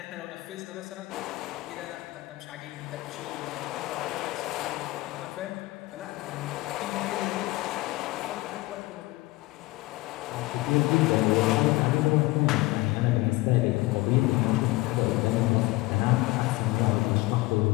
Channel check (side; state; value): right; quieter; 20.8 dB